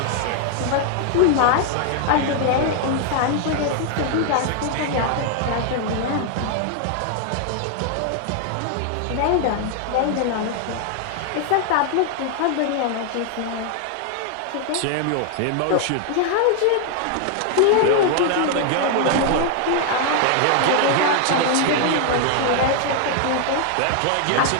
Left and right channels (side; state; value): both; different; correlation 0.00